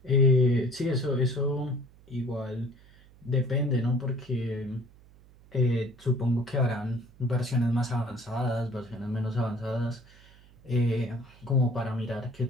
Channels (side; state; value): right; noise; hum, 25 dB below the sound